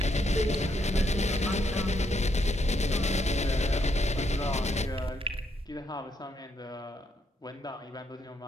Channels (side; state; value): both; normal; correlation 0.76